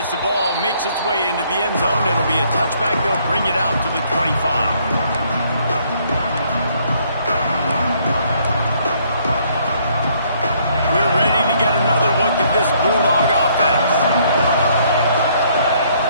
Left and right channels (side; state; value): both; inverted; correlation -0.66